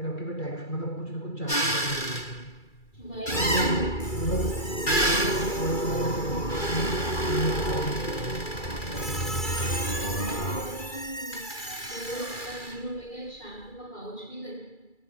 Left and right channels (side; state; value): right; late; 2.3 ms